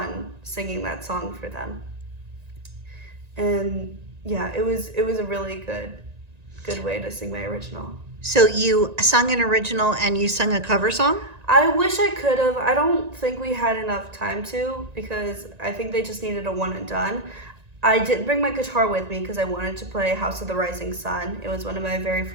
singing that song for them. And yeah, it was a really good way to sing my original. So you sung an original and you sung a cover song? I wish I could have. I don't think we had enough time to, because I think they just needed a one and done. I did bring my guitar with me because I wanted to play House of the Rising Sun. It was one of my very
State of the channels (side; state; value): left; late; 1.9 ms